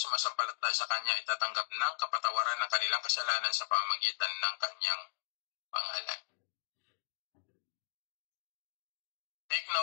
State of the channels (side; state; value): right; silent; 53 dB below the other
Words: sa kanya itatanggap ng kapatawaran ng kanilang kasalanan sa pamamagitan ng kanyang pangalan. Take